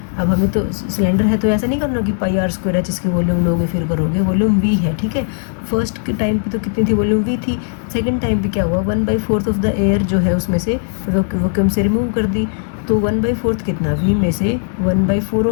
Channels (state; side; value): silent; right; 68 dB below the other